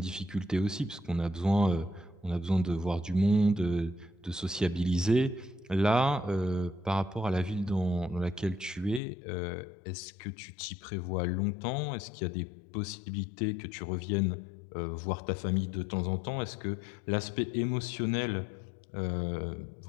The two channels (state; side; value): drops out; right; at 9.0 s